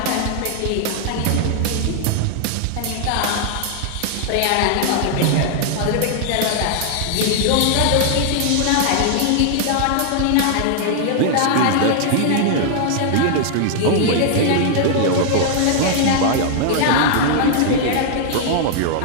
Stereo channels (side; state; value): both; different; correlation -0.01